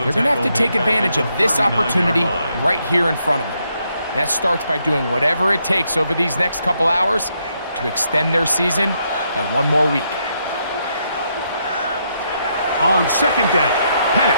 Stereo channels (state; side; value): inverted; both; correlation -0.77